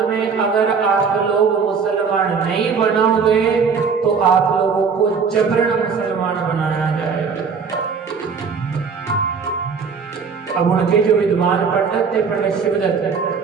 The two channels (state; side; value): quieter; left; 5.7 dB